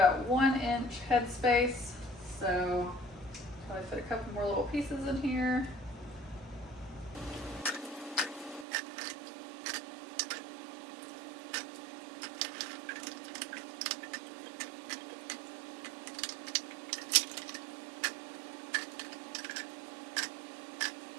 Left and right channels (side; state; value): left; drops out; at 8.7 s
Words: 1 inch headspace. So probably fit a couple more little pieces in here.